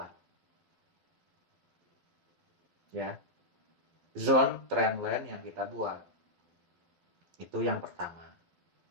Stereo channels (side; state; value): left; late; 12 ms